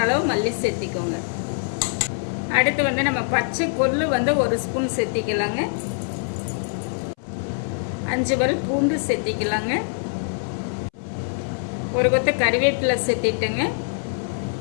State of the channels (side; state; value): right; silent; 63 dB below the other